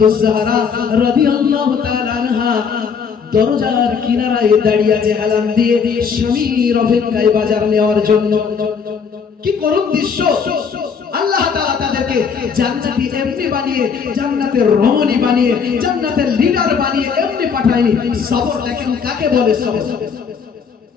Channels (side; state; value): right; quieter; 6.2 dB